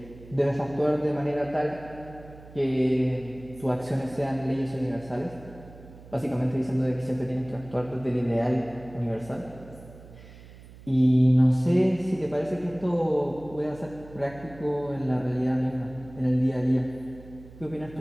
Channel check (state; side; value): noise; right; hum, 19 dB below the sound